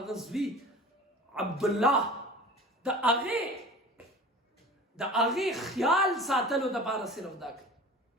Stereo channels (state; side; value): normal; both; correlation 0.39